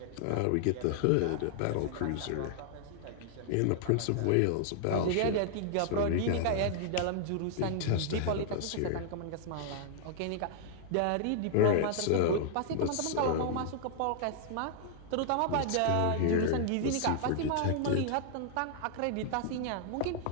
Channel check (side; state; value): both; different; correlation 0.00